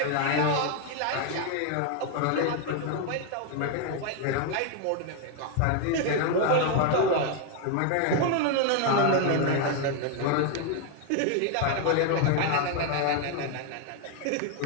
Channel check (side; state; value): both; different; correlation 0.01